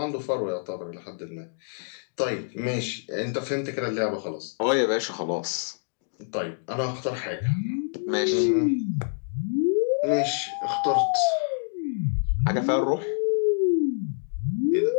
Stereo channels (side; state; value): right; silent; digital silence